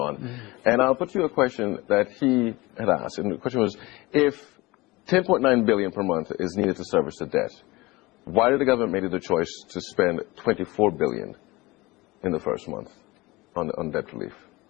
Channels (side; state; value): right; quieter; 21.8 dB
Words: And I'll put you a question that he had asked. And the question was, if 10.9 billion per month is needed to service the debt, why did the government make the choice to spend 24 billion in the first month on debt relief?